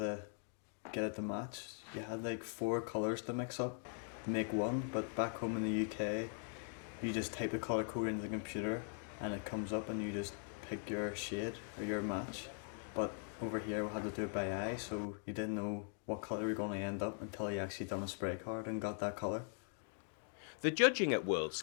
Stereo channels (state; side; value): silent; right; 50 dB below the other